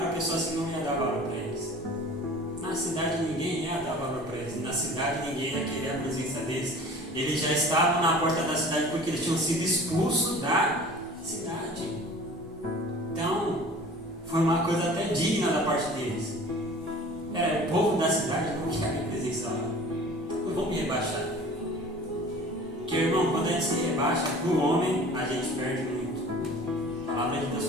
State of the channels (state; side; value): normal; both; correlation 0.44